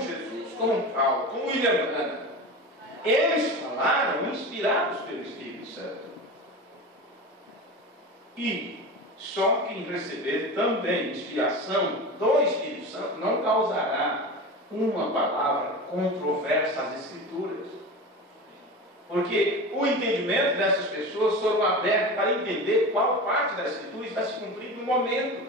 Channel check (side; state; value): both; normal; correlation 0.28